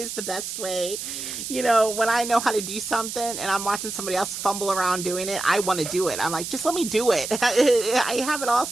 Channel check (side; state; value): right; noise; hiss, 7 dB below the sound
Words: is the best way. When I know how to do something and I'm watching somebody else fumble around doing it, I want to do it. I'm like, just let me do it. I have it all